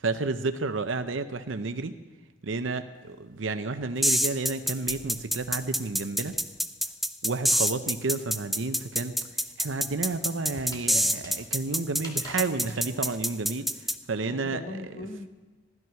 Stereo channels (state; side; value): normal; both; correlation 0.55